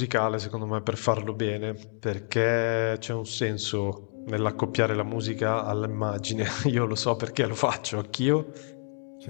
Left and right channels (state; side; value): silent; right; digital silence